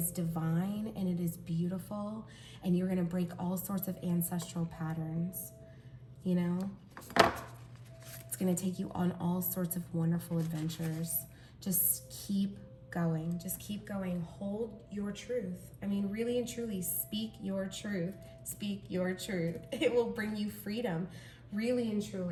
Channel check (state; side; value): identical; both; correlation 1.00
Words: divine and it is beautiful, and you're going to break all sorts of ancestral patterns. You know, it's going to take you on all sorts of wonderful adventures. Just keep going. Just keep going. Hold your truth. I mean, really and truly, speak your truth. Speak your truth. It will bring you freedom. Really and